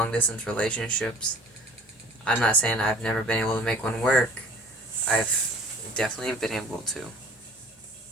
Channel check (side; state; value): both; normal; correlation 0.47